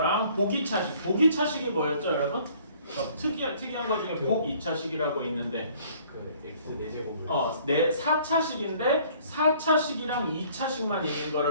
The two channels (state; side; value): inverted; both; correlation -0.57